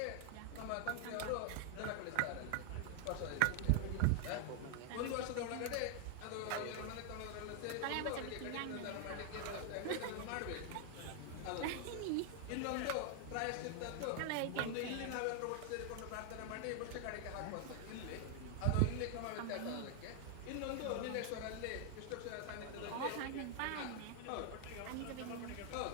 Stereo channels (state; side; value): different; both; correlation 0.00